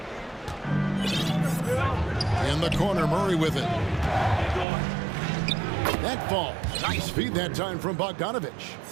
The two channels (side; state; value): left; drops out; at 4.7 s